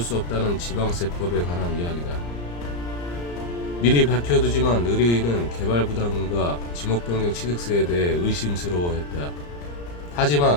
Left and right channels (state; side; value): late; right; 34 ms